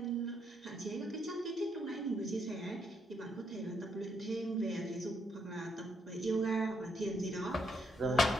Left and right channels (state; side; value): normal; both; correlation 0.74